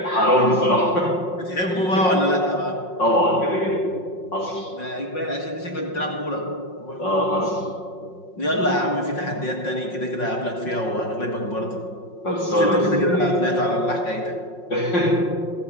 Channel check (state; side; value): late; right; 5.5 ms